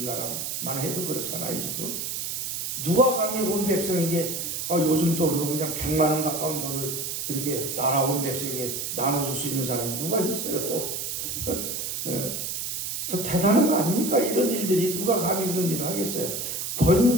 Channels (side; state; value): right; noise; hiss, 3 dB below the sound